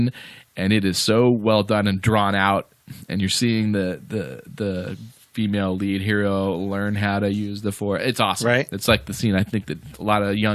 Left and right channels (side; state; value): both; identical; correlation 1.00